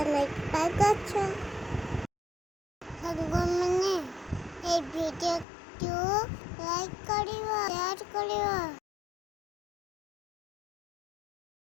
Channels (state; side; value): drops out; right; at 5.5 s